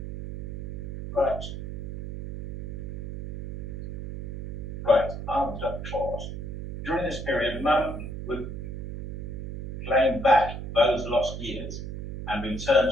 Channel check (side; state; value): right; noise; hum, 7 dB below the sound